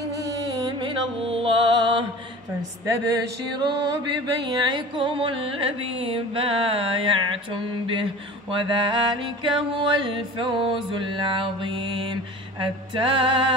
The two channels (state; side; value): normal; both; correlation 0.39